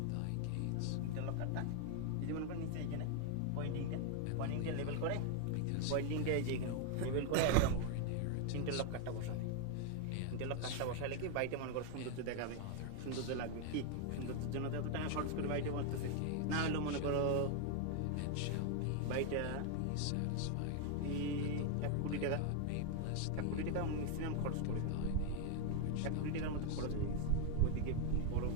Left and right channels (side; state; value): both; different; correlation 0.00